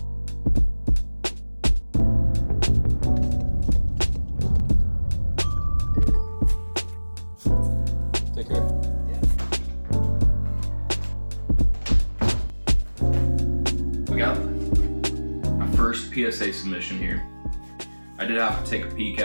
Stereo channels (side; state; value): both; inverted; correlation -1.00